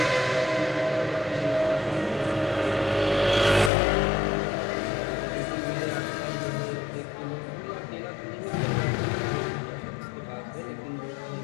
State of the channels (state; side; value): drops out; right; at 3.7 s